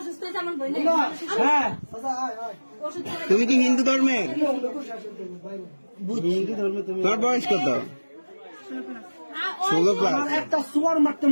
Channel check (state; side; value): inverted; both; correlation -1.00